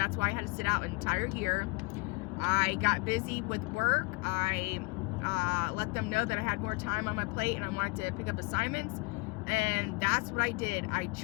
why I had to sit out an entire year. I got busy with work. I let them know that I had more time on my plate and I wanted to pick up assignments. And that's what I did. I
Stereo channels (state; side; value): quieter; right; 27.8 dB